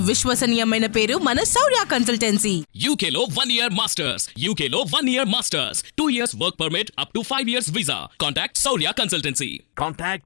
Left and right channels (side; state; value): right; silent; digital silence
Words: విశ్వసనీయమైన పేరు మన శౌర్య కన్సల్టెన్సీ. UK లో 1 year masters, UK లో 1 year masters, 2 years work permit up to 5 years visa. Contact Saurya Consultancy. Contact